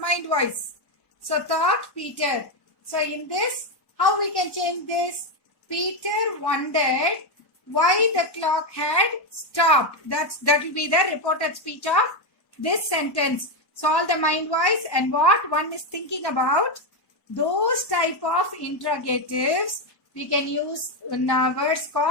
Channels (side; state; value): right; late; 1.1 ms